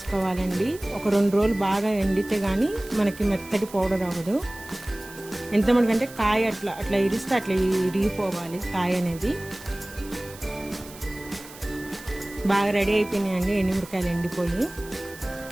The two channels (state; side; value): noise; right; hiss, 18 dB below the sound